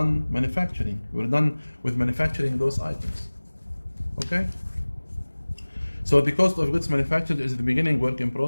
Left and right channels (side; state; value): both; inverted; correlation -1.00